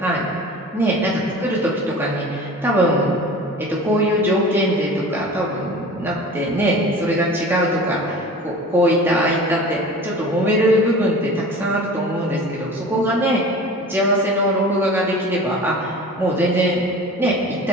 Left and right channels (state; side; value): normal; both; correlation 0.39